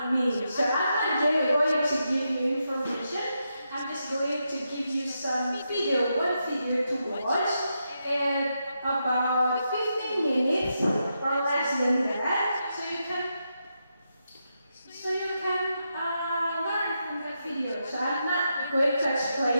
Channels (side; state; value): both; inverted; correlation -0.84